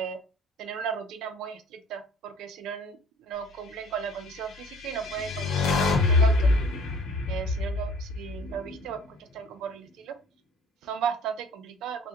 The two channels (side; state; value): both; normal; correlation 0.50